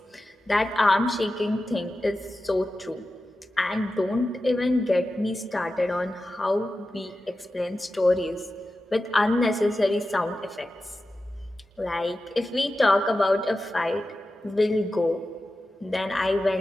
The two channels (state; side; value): normal; both; correlation 0.93